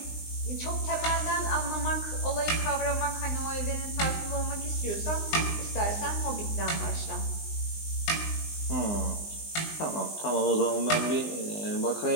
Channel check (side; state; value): right; late; 19 ms